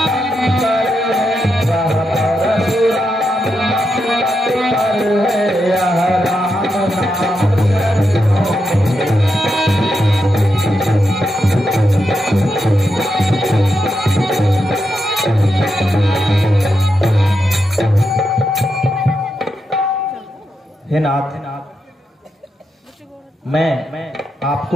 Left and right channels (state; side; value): normal; both; correlation 0.85